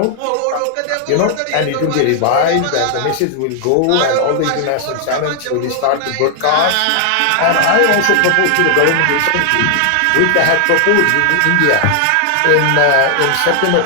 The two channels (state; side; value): different; both; correlation 0.00